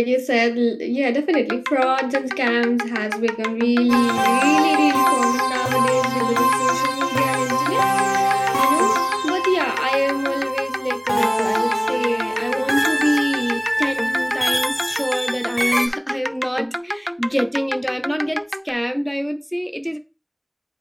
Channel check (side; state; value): both; identical; correlation 1.00